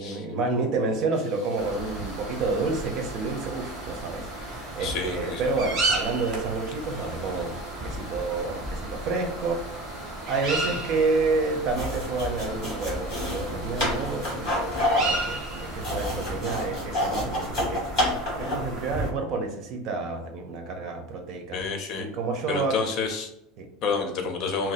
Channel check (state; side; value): normal; both; correlation 0.33